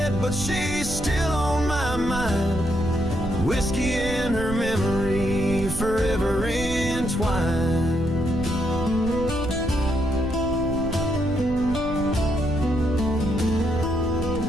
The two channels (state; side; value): noise; right; rumble, 8 dB below the sound